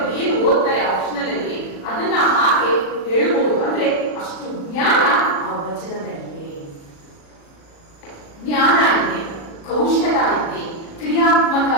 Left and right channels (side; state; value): right; late; 36 ms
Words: ಏನು ಓದ್ತಾರೆ ಆಪ್ಷನಲ್ ಅಲ್ಲಿ ಅದನ್ನ ಹಾಗೆ ಹೇಳ್ಬೋದು. ಅಂದ್ರೆ ಅಷ್ಟು ಜ್ಞಾನ ಆ ವಚನದಲ್ಲಿದೆ. ಜ್ಞಾನ ಇದೆ, ಕೌಶಲ ಇದೆ, ಕ್ರಿಯಾತ್ಮಕ